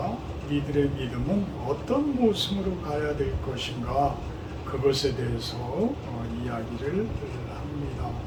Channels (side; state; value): both; identical; correlation 1.00